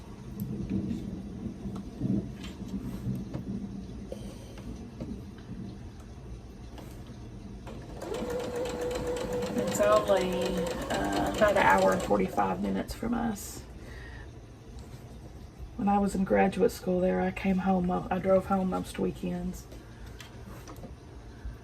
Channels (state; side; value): identical; both; correlation 1.00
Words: only about an hour and 45 minutes from us. When I was in graduate school there, I came home, I drove home most weekends.